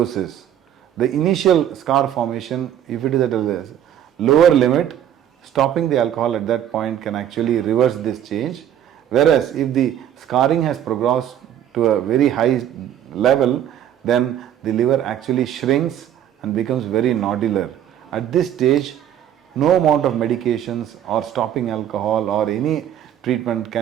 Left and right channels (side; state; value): left; quieter; 10.5 dB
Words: The initial scar formation, if it is at a lower limit, stopping the alcohol at that point can actually reverse this change. Whereas if the scarring has progressed to a very high level, then the liver actually shrinks and becomes very nodular. At this stage, no amount of medications or stopping alcohol or any treatment